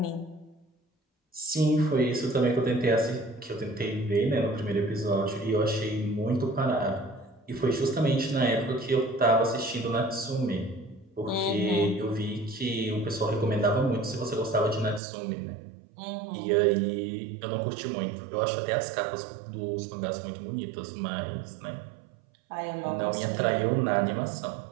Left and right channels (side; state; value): left; drops out; at 15.0 s